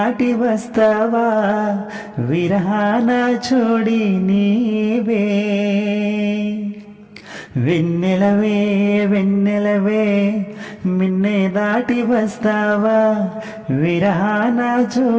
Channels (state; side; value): identical; both; correlation 1.00